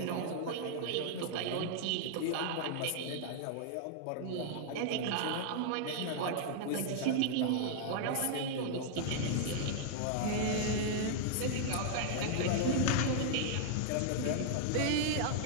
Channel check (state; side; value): different; both; correlation -0.01